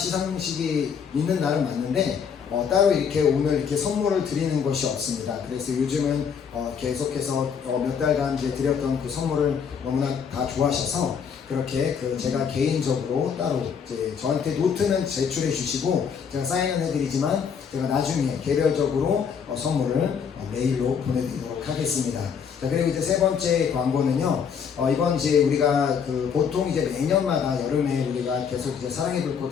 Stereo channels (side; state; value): right; quieter; 6.9 dB